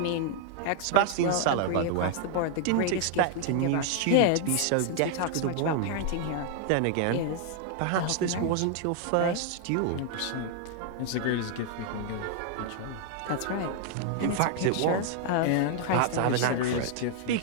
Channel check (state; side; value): different; both; correlation 0.00